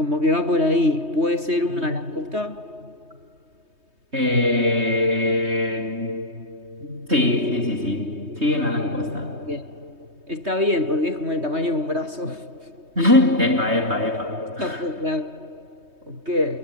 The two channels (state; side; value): late; left; 3.2 ms